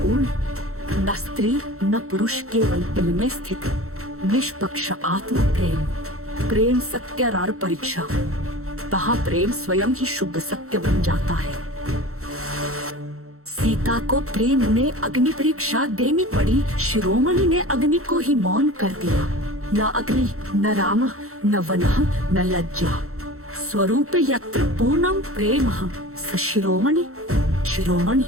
न स्त्री न पुरुष, केवल दिल में स्थित निष्पक्ष आत्म प्रेम। प्रेम सत्यारार परीक्षा, वहाँ प्रेम स्वयं ही शुद्ध सत्य बन जाता है। सीता को प्रेम ने अग्नि परीक्षा देनी पड़ी। शिरोमणि ने अग्नि को ही मौन कर दिया। न अग्नि न राम न वनः न लज्जा, स्वरूप यत्र पूर्णम प्रेम स शिरोमणि। शिरोमणि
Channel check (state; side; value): late; left; 0.63 ms